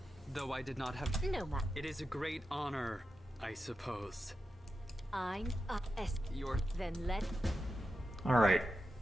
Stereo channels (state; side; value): normal; both; correlation 0.90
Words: though I did not have. No, ma. It is a great honor, I suppose. I'm Your Then let... Alright,